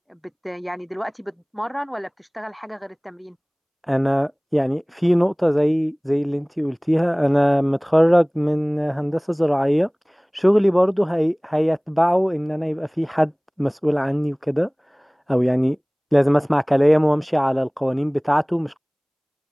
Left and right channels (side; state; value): both; identical; correlation 1.00